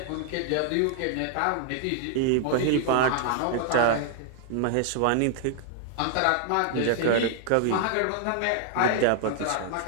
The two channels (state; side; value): different; both; correlation 0.00